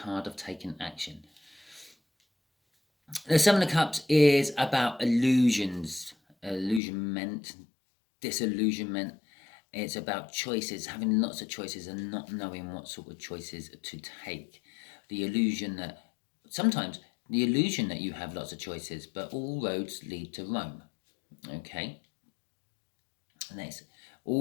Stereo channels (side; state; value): right; drops out; at 6.8 s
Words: of taking action. The Seven of Cups is about illusions, illusionment, disillusionment. It's about choices, having lots of choices and not knowing what sort of choices to take. The illusion that you have lots of choices, but all roads lead to Rome. Okay? And